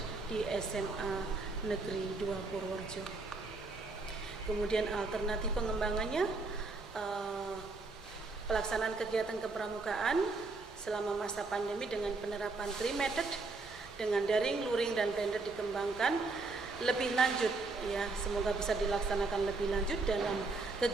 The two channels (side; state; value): left; quieter; 3.7 dB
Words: di SMA Negeri 2 Purworejo. Kemudian alternatif pengembangannya, pelaksanaan kegiatan kepramukaan selama masa pandemi dengan penerapan 3 method dengan daring, luring, dan blended dikembangkan lebih lanjut, ya, semoga bisa dilaksanakan lebih lanjut dalam